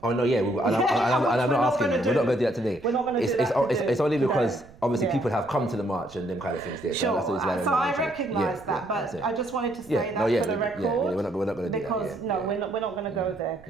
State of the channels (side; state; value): right; noise; rumble, 23 dB below the sound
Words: Oh no, yeah, I'm not asking. We're not going to do that today. We're not going to do that. It's only because obviously people have come to the march and them kind of things there. Sure. So I recognise that, but I just wanted to say that for the record. We're not going to do that. Because we're not going to go there,